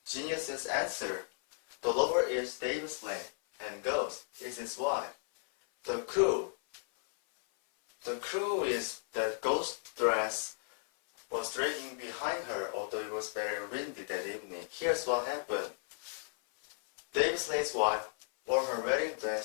Genius's answer. The lover is Davis Lane, and ghost is his wife. The clue is that ghost dress was dragging behind her, although it was very windy that evening. Here's what happened. Davis Lane's wife wore her wedding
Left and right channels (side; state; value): right; silent; 55 dB below the other